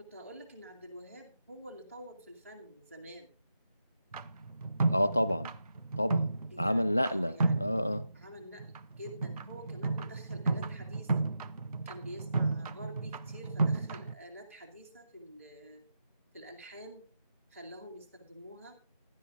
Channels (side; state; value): both; inverted; correlation -0.88